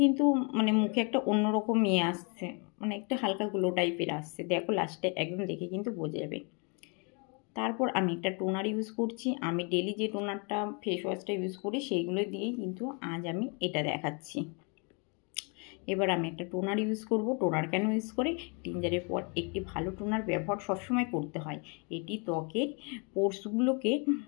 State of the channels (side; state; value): right; quieter; 34.5 dB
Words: কিন্তু মুখে একটা অন্যরকম আসছে, একটা হালকা গ্লো টাইপের আসছে। দেখো লাস্টে একদম দেখে কিন্তু বোঝা যাবে। তারপর আমি একটা টোনার ইউজ করছি। আমি ডেলি যে টোনারটা, ফেস ওয়াশটা ইউজ করি সেইগুলো দিয়েই কিন্তু আজ আমি এটা দেখাচ্ছি। এবার আমি একটা টোনার ইউজ করব। টোনার কেন ইউজ করে, ক্লিনজারের পর একটি ভালো টোনার ব্যবহার সবসময় করতে হয়। এটি ত্বকের পোর্সগুলোকে